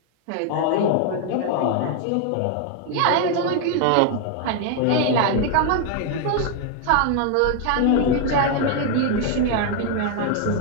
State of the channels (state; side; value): different; both; correlation 0.01